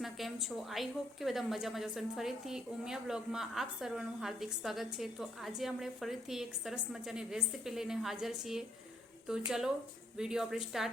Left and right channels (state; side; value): normal; both; correlation 0.71